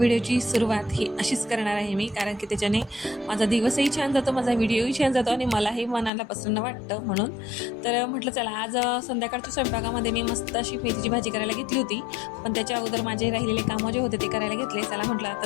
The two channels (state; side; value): drops out; right; at 6.1 s